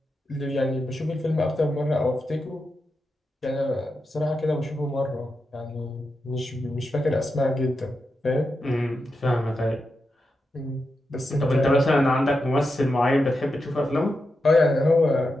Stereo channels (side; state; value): both; normal; correlation 0.88